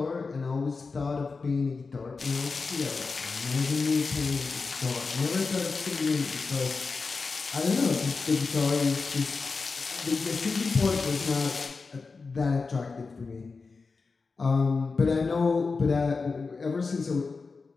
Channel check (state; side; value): quieter; right; 4.4 dB